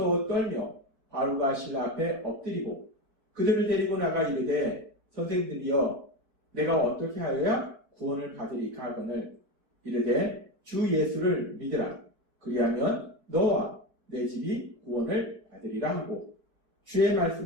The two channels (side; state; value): left; late; 4.6 ms